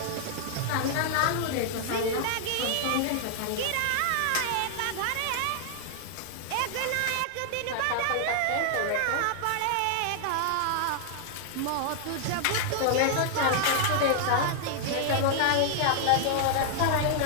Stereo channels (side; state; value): both; different; correlation -0.01